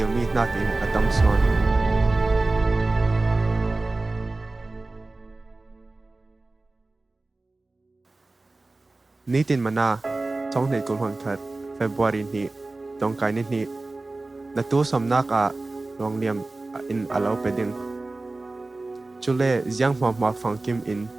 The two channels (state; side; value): quieter; left; 3.2 dB